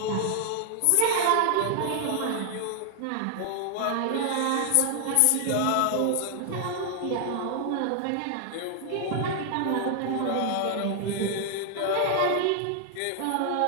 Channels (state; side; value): different; both; correlation 0.00